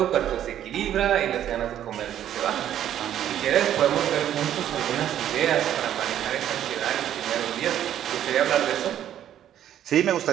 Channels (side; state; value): left; quieter; 10.9 dB